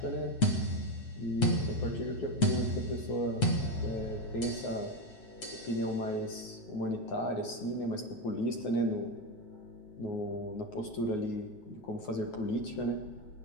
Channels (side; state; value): right; late; 8.3 ms